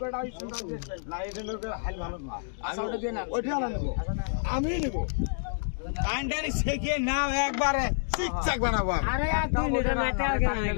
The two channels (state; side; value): silent; right; digital silence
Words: না এটা নৌকা হাল ভালো না আচ্ছা ওটা দিয়ে না ওইটা না নেব আমি নেব কান্ডারি শেখে নাও একবারে চিকচাক বানাবো আরে আর 2 লিটার মেটা আগে না